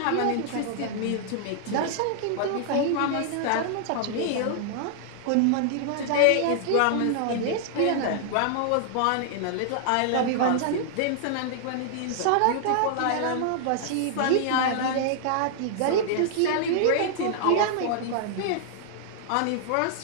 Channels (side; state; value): both; different; correlation -0.01